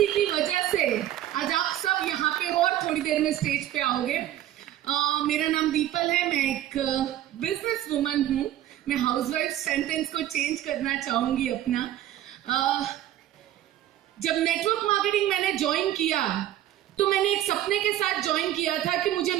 की वजह से आज आप सब यहाँ पे हो और थोड़ी देर में स्टेज पे आओगे। मेरा नाम दीपल है, मैं एक बिजनेस वुमन हूँ। मैं हाउसवाइफ सेंटेंस को चेंज करना चाहूंगी अपना। जब नेटवर्क मार्केटिंग मैंने ज्वाइन किया तो मैंने एक सपने के साथ ज्वाइन किया था कि मुझे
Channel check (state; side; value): quieter; left; 12.9 dB